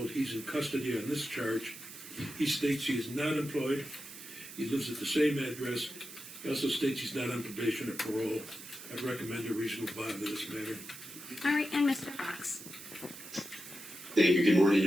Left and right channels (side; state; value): right; noise; hiss, 13 dB below the sound